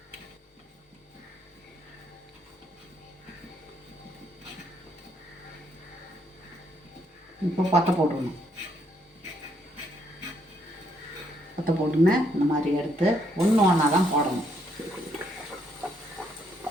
இப்போ பற்ற போட்டுடணும். பற்ற போட்டுன்னு இந்த மாதிரி எடுத்து ஒன்று ஒன்றா தான் போடணும்.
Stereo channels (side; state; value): both; normal; correlation 0.72